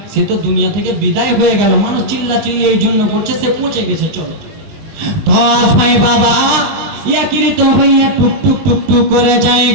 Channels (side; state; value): left; late; 20 ms